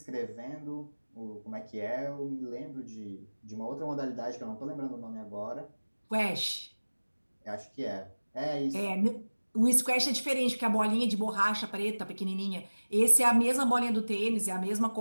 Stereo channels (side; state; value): both; inverted; correlation -1.00